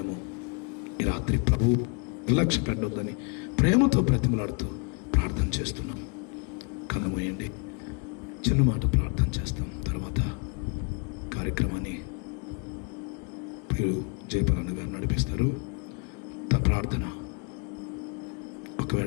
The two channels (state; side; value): quieter; right; 35.9 dB